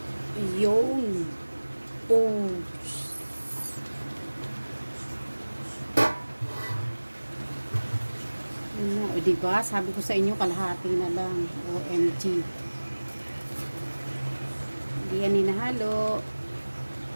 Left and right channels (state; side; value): inverted; both; correlation -1.00